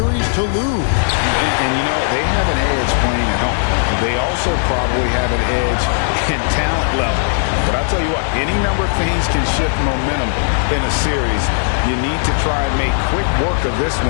to lose. And you know, they have an edge playing at home. They also probably have an edge in talent level. But I'll tell you what, any number of things can shift momentum in a series. You need to try and make quick work of this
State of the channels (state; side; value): silent; right; 68 dB below the other